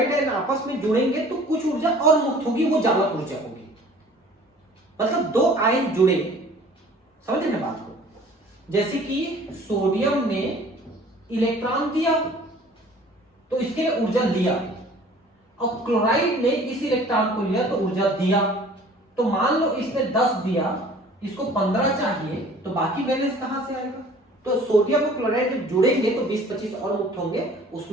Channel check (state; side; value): normal; both; correlation 0.49